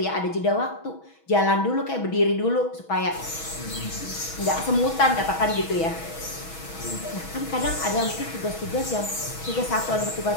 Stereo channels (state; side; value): late; right; 6.2 ms